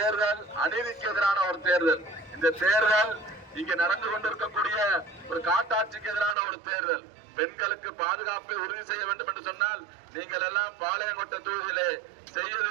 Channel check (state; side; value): drops out; left; at 6.4 s